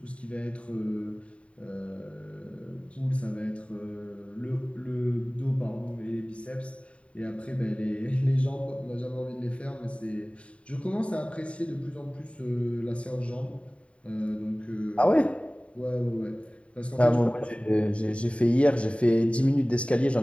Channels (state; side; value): late; right; 0.062 ms